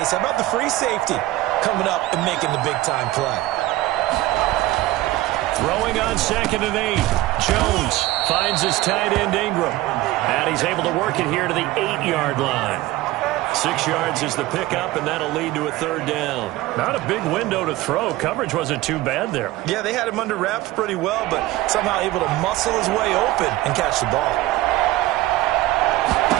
how about the free safety coming up and making the big-time play? Throwing on second and 8. Jones finds his tight end Ingram. And he's able to work it here to the 8-yard line. 6 yards is the pickup, and that'll lead to a third down. Not a big window to throw. Coverage wasn't too bad there. Yeah, they had him under wraps pretty well, but somehow able to muscle his way open and catch the ball.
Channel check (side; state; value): left; quieter; 17.2 dB